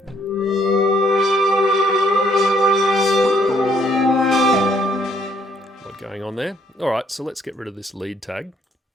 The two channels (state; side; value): normal; both; correlation 0.67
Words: What going on there? All right, so let's get rid of this lead tag.